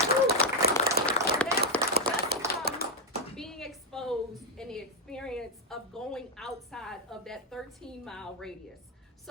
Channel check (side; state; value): both; normal; correlation 0.01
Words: Being exposed and the experience of going outside of that 13-mile radius.